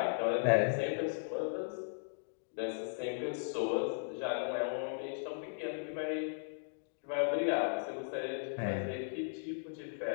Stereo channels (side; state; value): right; silent; digital silence